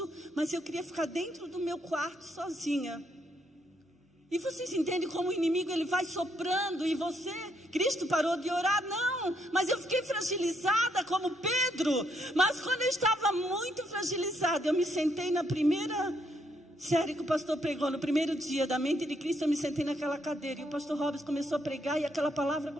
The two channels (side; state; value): both; normal; correlation 0.74